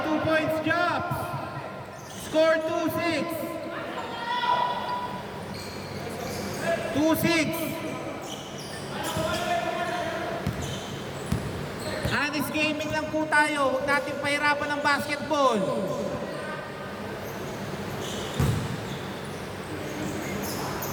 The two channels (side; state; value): both; identical; correlation 1.00